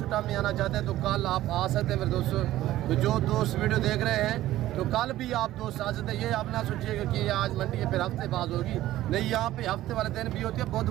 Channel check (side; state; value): left; quieter; 14.7 dB